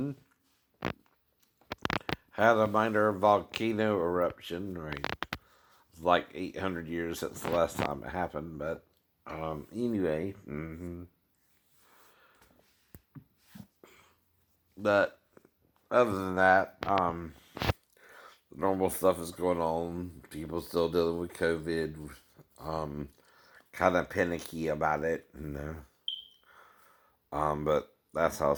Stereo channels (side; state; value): both; identical; correlation 1.00